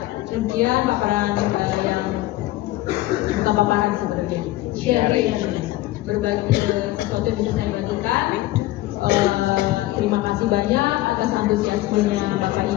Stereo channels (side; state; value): right; quieter; 17.1 dB